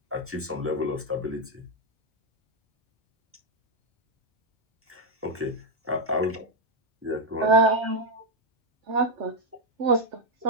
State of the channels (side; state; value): both; normal; correlation -0.02